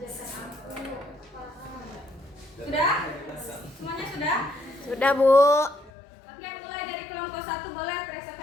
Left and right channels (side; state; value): right; drops out; at 5.9 s